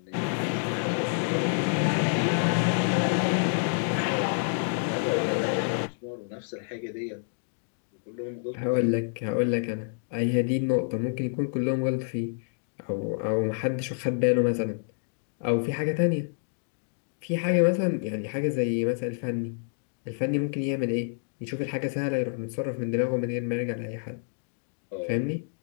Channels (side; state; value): right; silent; digital silence